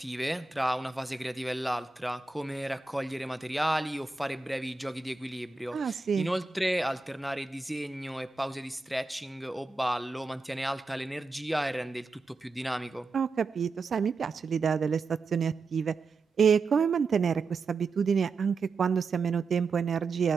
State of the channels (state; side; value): quieter; left; 4.2 dB